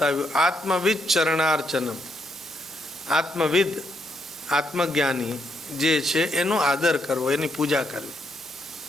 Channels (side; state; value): both; normal; correlation 0.77